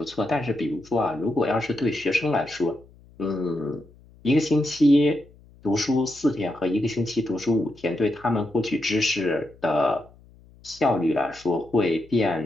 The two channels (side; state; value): left; noise; hum, 26 dB below the sound